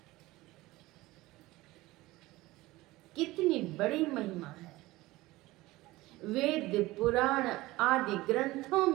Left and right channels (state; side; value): quieter; left; 19.1 dB